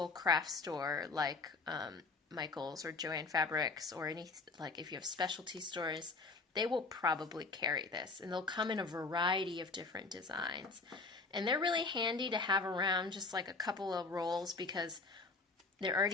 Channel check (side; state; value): right; quieter; 3.9 dB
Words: craft store like Michael's or Joann Fabrics or any, like if you have specialty stores, they will probably carry this. And they'll come in a variety of different designs. And they're really handy to have around, just like a couple of rolls, because they're